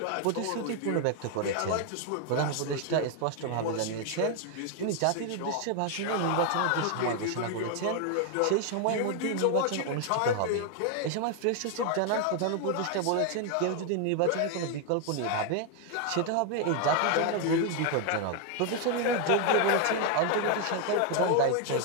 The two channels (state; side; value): different; both; correlation 0.01